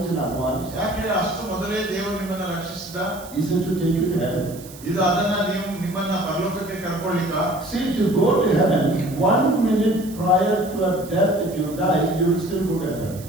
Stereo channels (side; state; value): right; noise; hiss, 18 dB below the sound